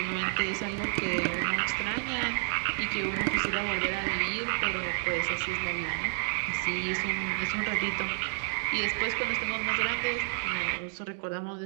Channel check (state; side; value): silent; left; 58 dB below the other